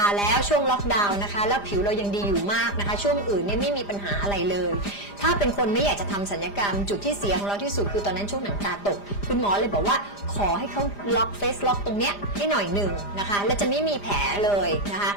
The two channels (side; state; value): right; late; 5.0 ms